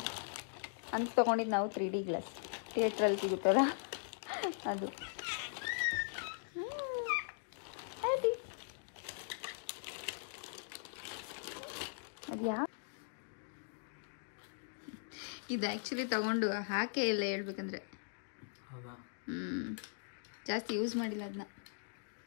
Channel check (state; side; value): silent; right; digital silence